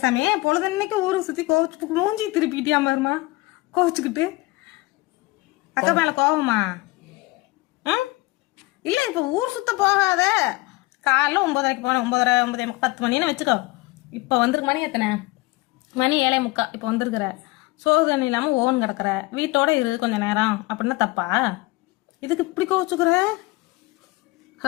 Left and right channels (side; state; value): right; quieter; 21.7 dB